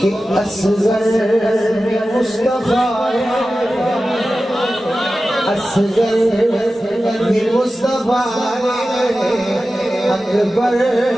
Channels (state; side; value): normal; both; correlation 0.94